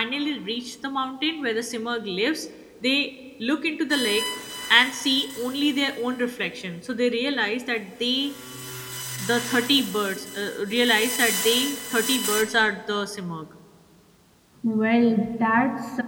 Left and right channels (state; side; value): identical; both; correlation 1.00